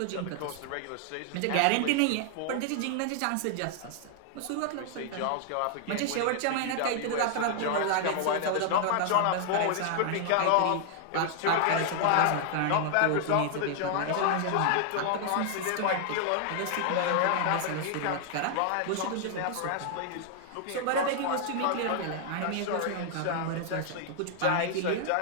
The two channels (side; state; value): both; different; correlation 0.00